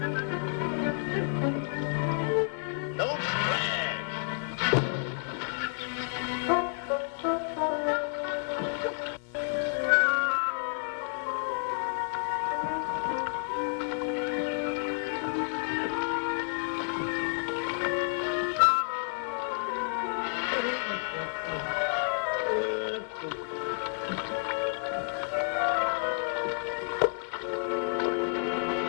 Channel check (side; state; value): right; silent; 58 dB below the other